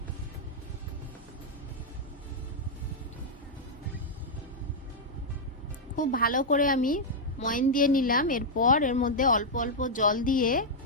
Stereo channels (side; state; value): both; normal; correlation -0.04